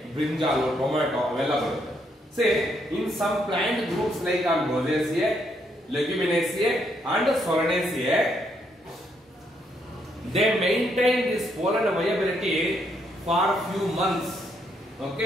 ಬ್ರಿಂಜಾಲ್, ಟೊಮ್ಯಾಟೊ ಅವೆಲ್ಲ ಬರುತ್ತೆ. Say in some plant groups like Rosaceae, Leguminosae and Solanaceae, they maintain this pollen viability for few months.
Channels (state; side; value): normal; both; correlation 0.74